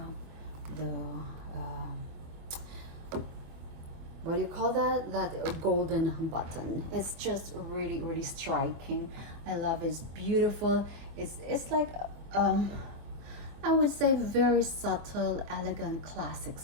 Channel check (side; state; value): left; late; 24 ms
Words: what do you call that, that golden button. It's just really, really striking. I love it. It's beautiful. It's like I would say very subtle, elegant, classic